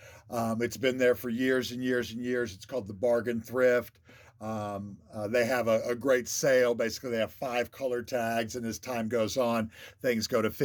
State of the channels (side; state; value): both; identical; correlation 1.00